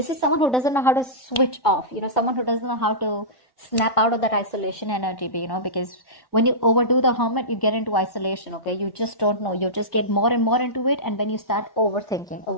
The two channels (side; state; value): right; late; 1.1 ms